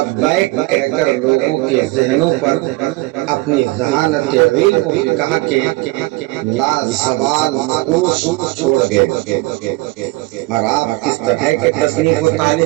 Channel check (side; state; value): left; quieter; 21.3 dB